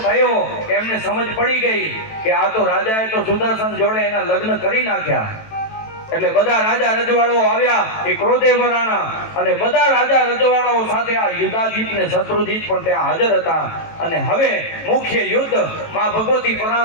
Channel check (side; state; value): right; late; 18 ms